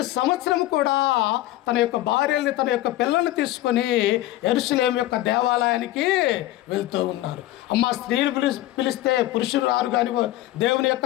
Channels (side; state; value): right; quieter; 15.7 dB